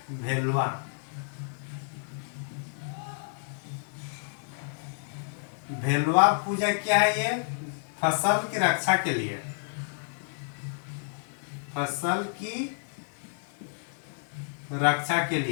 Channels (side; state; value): right; silent; digital silence